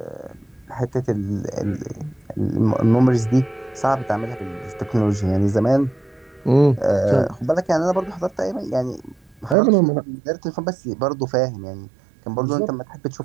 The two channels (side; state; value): left; drops out; at 9.6 s